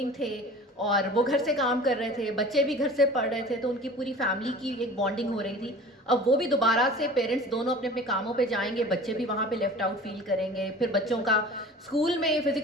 تھے اور وہ گھر سے کام کر رہے تھے، بچے بھی گھر سے پڑھ رہے تھے، تو ان کی پوری فیملی کی ایک بانڈنگ ہو رہی تھی. اب وہ بھی دوبارہ سے پیرنٹس دونوں اپنے اپنے کاموں پہ جائیں گے، بچے بھی وہاں پہ لیفٹ آؤٹ فیل کریں گے. پھر بچوں کا اسکول میں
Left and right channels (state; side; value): normal; both; correlation 0.41